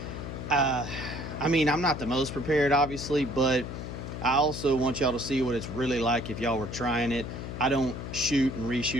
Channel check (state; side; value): noise; left; hum, 8 dB below the sound